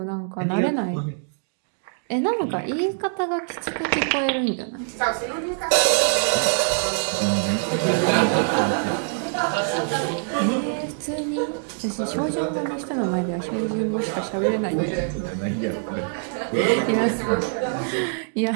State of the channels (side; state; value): left; silent; digital silence